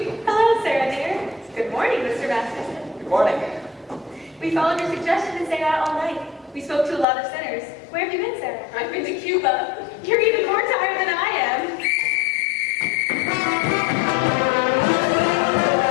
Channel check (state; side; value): drops out; right; at 7.1 s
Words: Hello, Sarah dear. Good morning, Mr. Masterson. Good morning. We followed your suggestion to stay out all night. We spoke to a lot of sinners. Where have you been, Sarah? I've been to Cuba. You're even more tired than I am.